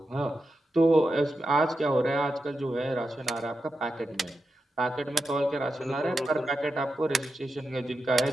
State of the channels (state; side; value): normal; both; correlation 0.89